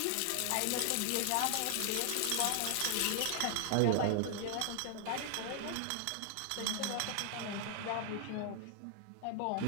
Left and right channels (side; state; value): both; different; correlation 0.00